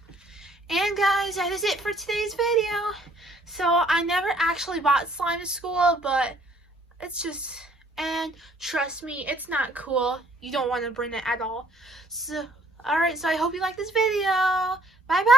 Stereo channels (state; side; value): normal; both; correlation 0.61